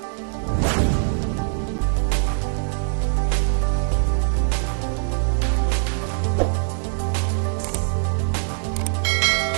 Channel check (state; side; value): silent; left; digital silence